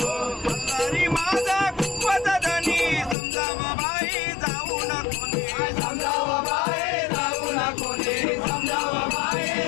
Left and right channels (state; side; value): drops out; right; at 3.2 s